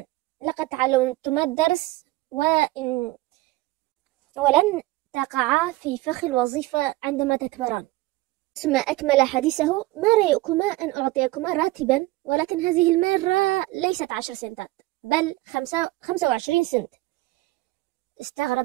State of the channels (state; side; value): quieter; left; 19.1 dB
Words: لقد تعلمتما الدرس ولن تقعا في فخ الوظيفة عندما تكبران. ثم أكمل حديثه: ما رأيكما أن أعطيكما راتبا، ولكن هذه المرة ليست 10 سنتات بل 25 سنت.